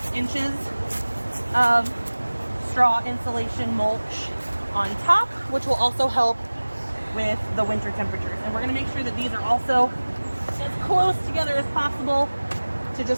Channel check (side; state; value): both; inverted; correlation -1.00